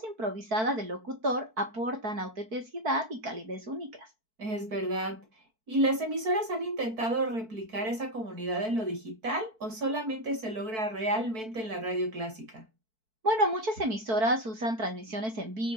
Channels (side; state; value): left; late; 4.5 ms